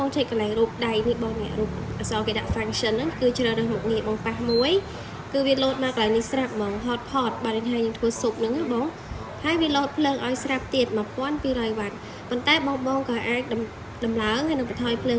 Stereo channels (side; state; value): both; identical; correlation 1.00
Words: ងចុចកន្លែងរូបដៃនេះបងនេះរូបអក្សរគេដាក់ function ហ្នឹងគឺជ្រើសរើសមុខងារបងប៉ះមួយគឺវាលោតមកកន្លែងនេះស្រាប់ហ្មង hotpot បាទនេះហើយយើងធ្វើស៊ុបហ្នឹងណាបងហើយវាលោតភ្លើងឲ្យស្រាប់ទៀត1200វ៉ាត់ប៉ុន្តែបងក៏អាចដំឡើងហើយនឹងបន្ថយភ្លើង